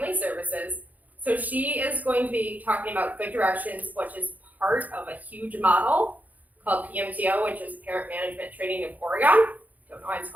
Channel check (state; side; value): late; left; 0.079 ms